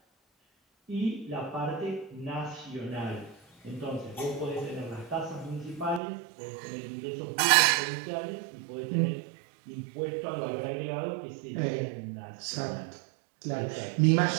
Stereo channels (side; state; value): left; drops out; at 6.0 s